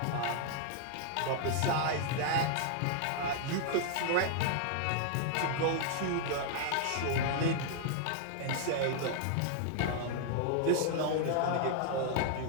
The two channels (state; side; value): different; both; correlation 0.00